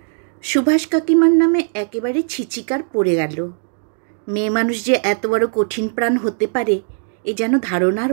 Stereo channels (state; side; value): silent; left; digital silence